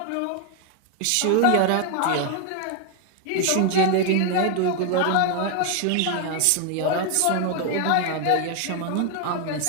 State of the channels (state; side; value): different; both; correlation 0.01